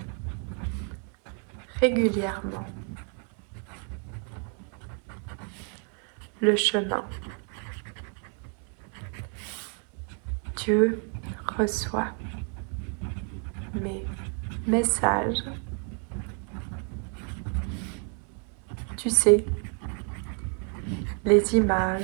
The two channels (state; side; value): quieter; left; 39.4 dB